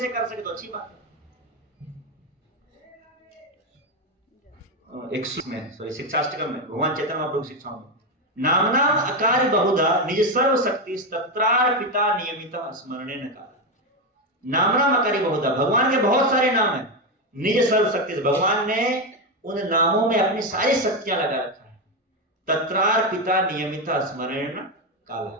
कर सके तो अच्छी बात है। 16 में भगवान चैतन्य महाप्रभु की शिक्षाओं में नाम अकार बहुधा निज सर्व शक्ति तत्रार पिता नियमित स्मरणे न काल। नाम अकारी बहुधा, भगवान के बहुत सारे नाम हैं। निज सर्व शक्ति, भगवान ने उन नामों में अपनी सारी शक्तियां लगा रखा है। तत्रार पिता नियमित स्मरण काल,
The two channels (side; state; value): both; normal; correlation 0.10